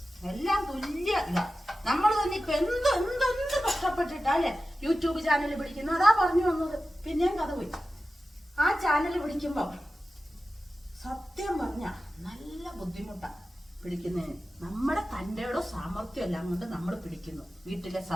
എല്ലാം തുല്യ ഇതാ. നമ്മൾ തന്നെ ഇപ്പൊ എന്ത് കഷ്ടപ്പെട്ടിട്ടാ അല്ലെ യൂട്യൂബ് ചാനൽ പിടിക്കുന്നു. അതാ പറഞ്ഞു വന്നത്. പിന്നെയും കഥ പോയി. ആ ചാനൽ പിടിക്കുമ്പോ സത്യം പറഞ്ഞ നല്ല ബുദ്ധിമുട്ടാ പിടിക്കുന്നതിന്. നമ്മുടെ തന്റെയോ സാമർത്ഥ്യം എല്ലാം കൊണ്ട് നമ്മൾ പിടിക്കുന്നു. വീട്ടിലെ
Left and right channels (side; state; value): both; normal; correlation 0.94